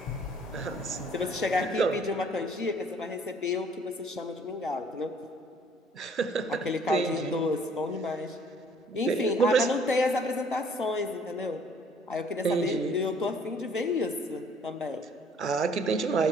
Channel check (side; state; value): both; normal; correlation 0.58